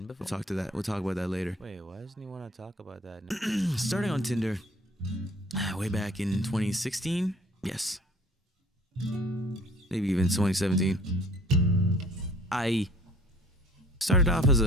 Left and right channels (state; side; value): normal; both; correlation 0.53